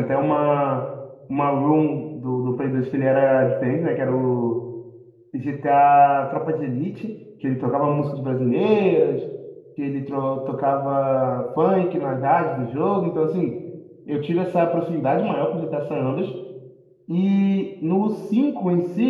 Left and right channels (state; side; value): identical; both; correlation 1.00